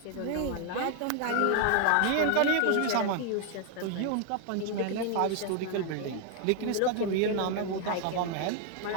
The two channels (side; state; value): both; different; correlation 0.00